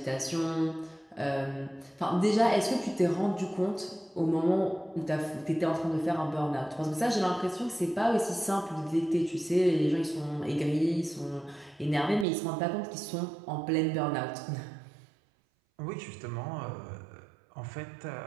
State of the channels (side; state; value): left; drops out; at 12.2 s